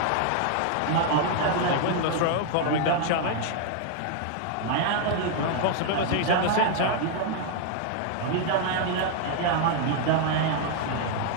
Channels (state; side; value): different; both; correlation 0.00